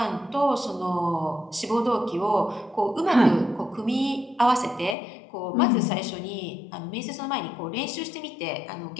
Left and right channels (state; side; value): drops out; right; at 5.0 s